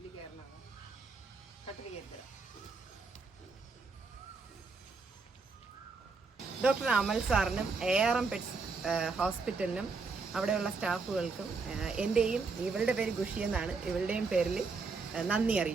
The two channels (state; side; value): quieter; left; 4.4 dB